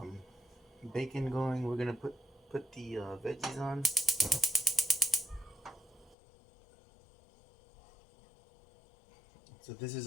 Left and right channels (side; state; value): right; drops out; at 6.2 s